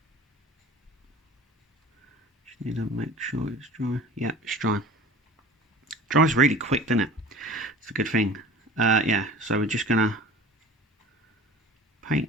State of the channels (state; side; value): normal; both; correlation 0.41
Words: just need to make sure it's dry. Yeah, it's dry. Dries really quick, doesn't it? It's a good thing. Yeah, so we're just going to paint